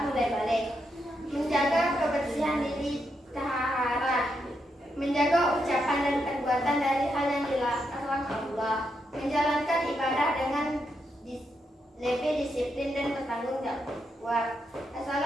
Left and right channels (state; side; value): normal; both; correlation 0.82